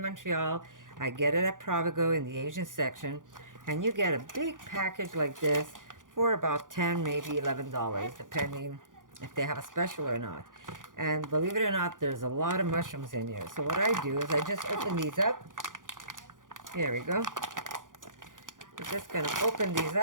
Montreal, I get it at Provigo in the Asian section. And you get a big package like this for about $10, maybe $11, depending if they have a special or not. And believe it or not, there's a lot of mushrooms in here. So what I do is I just open these up. Here we go. I'm just going to open these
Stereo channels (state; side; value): late; left; 0.89 ms